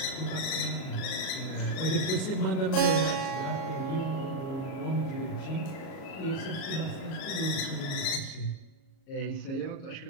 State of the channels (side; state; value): right; late; 37 ms